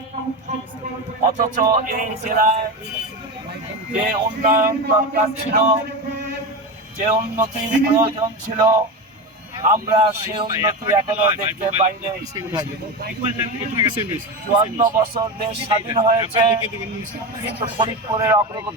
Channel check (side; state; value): both; normal; correlation 0.21